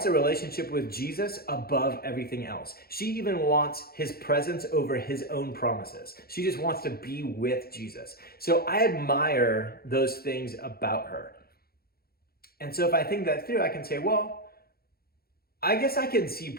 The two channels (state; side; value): late; right; 0.44 ms